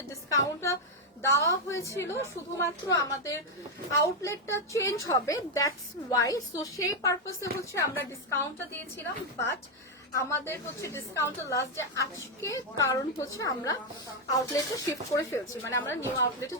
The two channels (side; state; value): both; normal; correlation 0.02